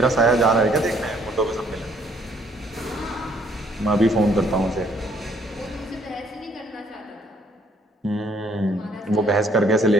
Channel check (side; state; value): both; normal; correlation 0.64